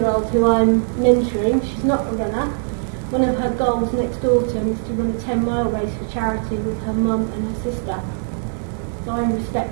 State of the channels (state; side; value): silent; left; digital silence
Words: who I'm mentoring. She's not a runner. One of her goals next autumn is to run a 10-mile race for charity with her mum and her sister. So I'm